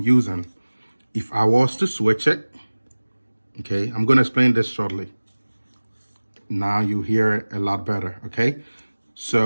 If I was to switch it, okay, I'm gonna explain this shortly. Now you hear it a lot better, okay?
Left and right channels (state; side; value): inverted; both; correlation -1.00